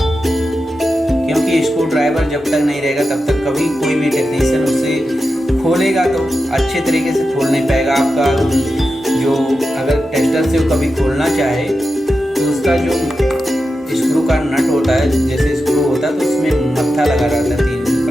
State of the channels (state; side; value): normal; both; correlation 0.90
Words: क्योंकि स्क्रू ड्राइवर जब तक नहीं रहेगा तब तक कभी कोई भी टेक्नीशियन उसे खोलेगा तो अच्छे तरीके से खोल नहीं पाएगा। आपका जो अगर टेस्टर से वो कभी खोलना चाहे तो उसका जो स्क्रू का नट होता है, जैसे स्क्रू होता है तो उसमें मत्था लगा रहता है 3